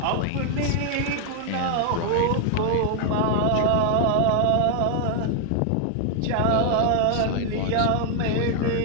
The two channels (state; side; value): different; both; correlation 0.00